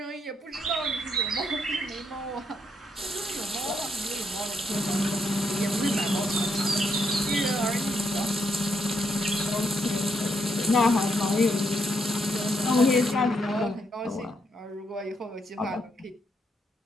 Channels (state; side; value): normal; both; correlation 0.77